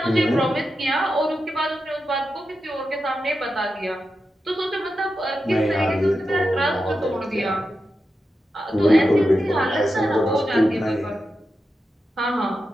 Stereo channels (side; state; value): both; normal; correlation 0.89